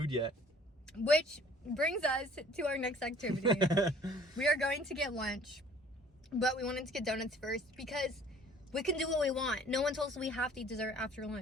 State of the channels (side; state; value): both; normal; correlation 0.53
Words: yet. Which brings us to our next activity. We are going to get lunch, but we wanted to get donuts first because we can do what we want. No one told us we have to eat dessert after